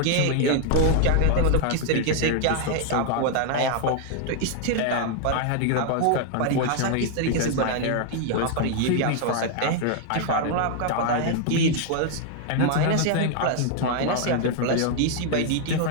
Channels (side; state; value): both; different; correlation 0.00